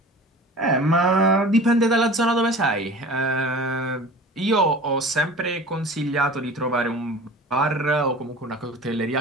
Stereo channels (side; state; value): both; normal; correlation 0.40